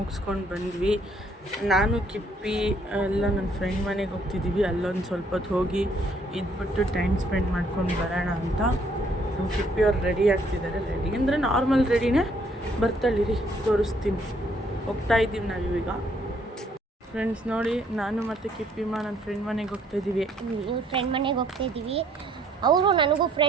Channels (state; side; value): normal; both; correlation 0.66